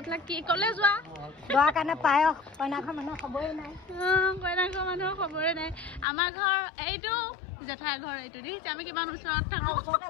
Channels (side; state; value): right; drops out; at 6.1 s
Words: কি কলে যোৱা দোৱাৰ কাৰণে পায়স কইনাঘৰ মানুহৰ খবৰে নাই কইনাঘৰ মানুহৰ খবৰে নাই আমাৰ ঘৰ এইটো জেঠাই ঘৰ এইটো দেখিছে আমি কিমান ওচৰত থাকো ওচৰতে